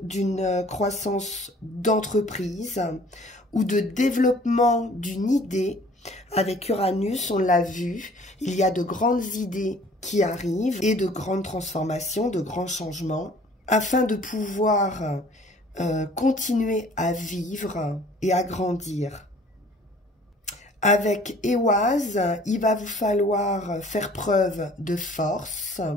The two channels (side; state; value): both; normal; correlation 0.53